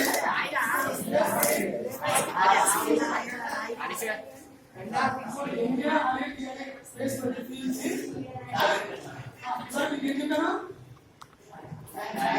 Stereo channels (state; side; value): identical; both; correlation 1.00